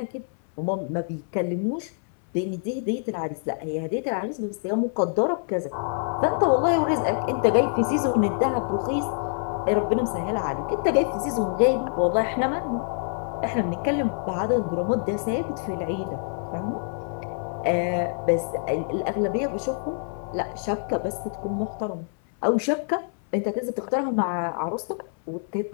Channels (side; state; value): right; silent; 61 dB below the other